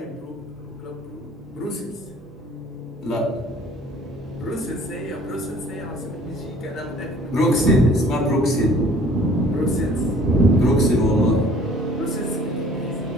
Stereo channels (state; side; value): normal; both; correlation 0.53